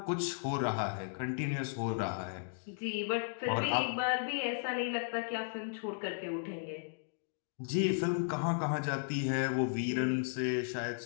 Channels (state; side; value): silent; right; digital silence